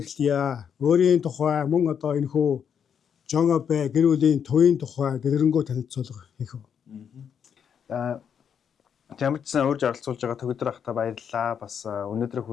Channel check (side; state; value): right; quieter; 7.7 dB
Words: эхлэе. Өөрийн тухай мөн одоо энэхүү Жон Абе гэр бүлийн төвийн тухай дэлгэрэнгүй танилцуулга хийх үү. Жамчсан урьж оролцуулж байгаа Төгөлдөр ахта баярлалаа. Бас өнөөдрийн